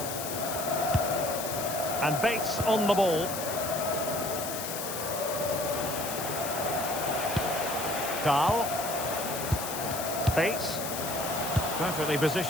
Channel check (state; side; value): noise; left; hiss, 6 dB below the sound